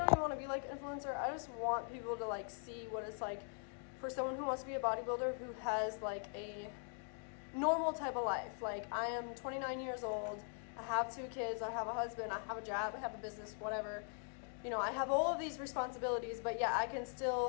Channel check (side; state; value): right; silent; 50 dB below the other